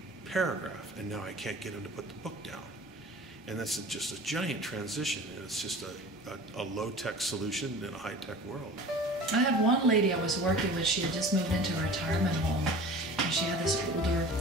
paragraph, and now I can't get him to put the book down. And that's just a giant transition, and it's just a low-tech solution in a high-tech world. I had one lady I was working with. She had just moved into a retirement home, and she had this older,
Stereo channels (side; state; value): both; normal; correlation 0.40